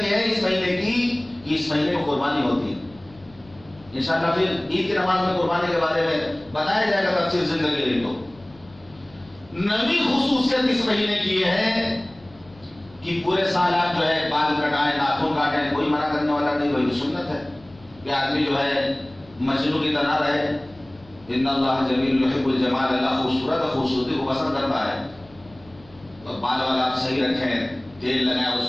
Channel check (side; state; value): left; noise; hum, 25 dB below the sound